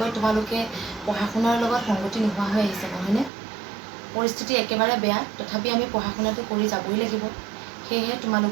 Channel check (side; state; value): left; drops out; at 3.3 s